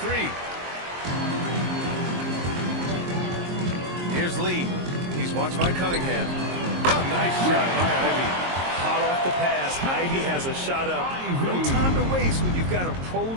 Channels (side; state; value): left; late; 22 ms